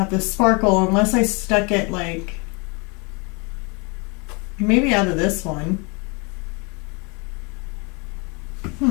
to sparkle unless I stuck it like maybe out of this one.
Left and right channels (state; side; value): quieter; right; 31.0 dB